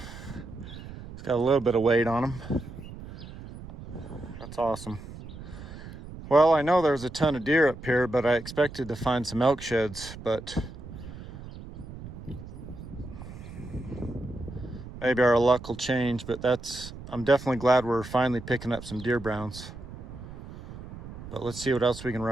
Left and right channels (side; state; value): right; noise; rumble, 13 dB below the sound